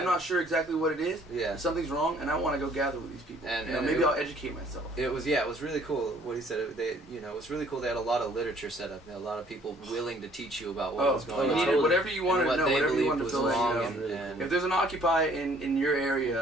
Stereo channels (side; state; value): both; normal; correlation 0.59